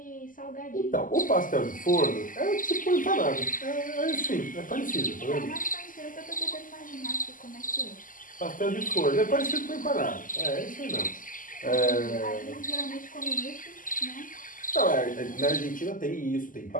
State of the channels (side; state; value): right; late; 0.39 ms